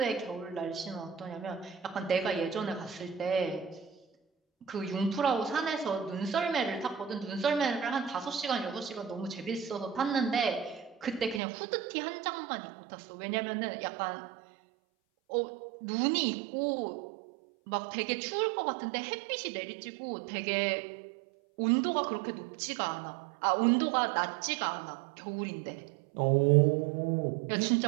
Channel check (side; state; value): left; drops out; at 11.4 s